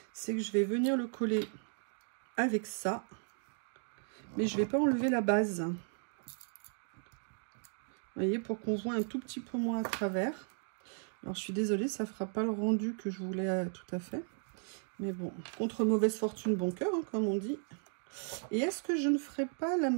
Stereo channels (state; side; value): silent; left; 54 dB below the other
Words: c'est que je vais venir le coller avec ça. Mais je vais pas enlever la base. Vous voyez, pour qu'on voit un tout petit peu moins à travers. Alors, je suis désolée, ça fera pas le rendu que je voulais tout à fait. Mais bon, contre mauvaise fortune, bon cœur, hein, comme on dit. Et est-ce que je ne ferais pas la